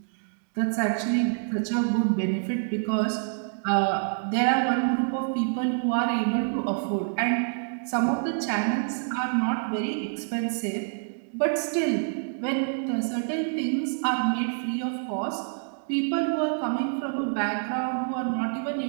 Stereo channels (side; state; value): left; silent; digital silence